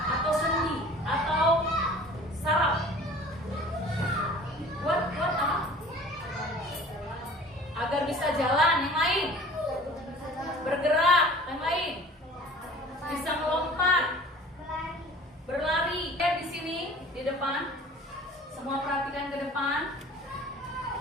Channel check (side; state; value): both; normal; correlation 0.46